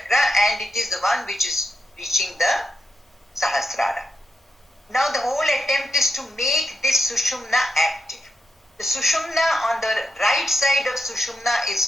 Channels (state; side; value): normal; both; correlation 0.85